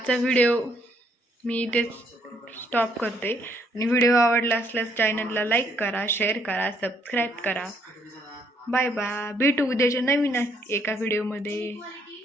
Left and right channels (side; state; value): both; normal; correlation 0.69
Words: व्हिडिओ मी इथे स्टॉप करते. आणि व्हिडिओ आवडला असल्यास चॅनलला लाईक करा, शेअर करा, सबस्क्राईब करा. Bye bye. भेटू उद्याच्या नवीन एका व्हिडिओमध्ये.